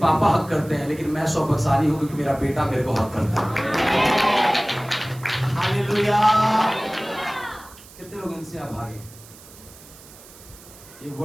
हक करते हैं, लेकिन मैं सौभाग्यशाली हूं क्योंकि मेरा बेटा मेरे को हक करता है। हालेलुया। कितने लोग इनसे अभागे? ये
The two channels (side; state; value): right; noise; hiss, 21 dB below the sound